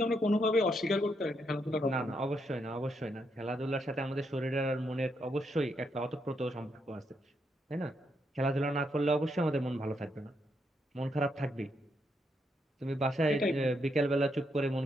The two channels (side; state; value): both; normal; correlation 0.78